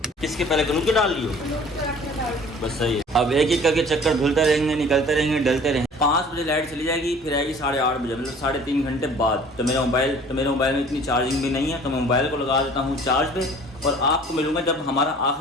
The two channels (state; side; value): normal; both; correlation 0.49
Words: किसके पहले करूँ के डाल लियो? बस सही है। अब एक करके चक्कर धुलते रहेंगे, निकलते रहेंगे, डलते रहेंगे। 5 बजे लाइट चली जाएगी, फिर आएगी 8:30 बजे, मतलब 3.5 घंटे बाद। तो मेरे मोबाइल में इतनी चार्जिंग भी नहीं है, तो मैं मोबाइल को लगा देता हूँ चार्ज पे, और आपको मिलूंगा जब हमारा